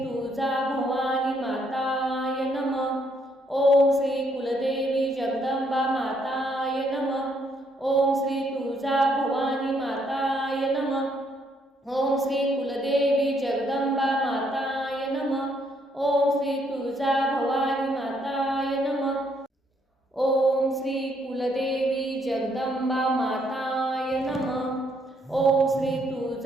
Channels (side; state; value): both; normal; correlation 0.71